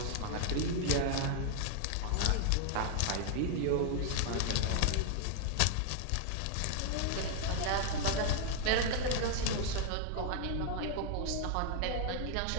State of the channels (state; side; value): different; both; correlation 0.00